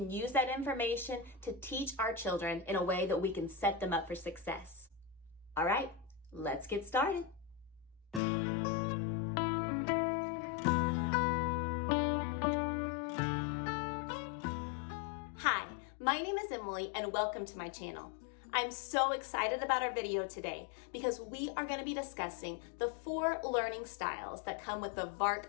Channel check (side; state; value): right; drops out; at 8.2 s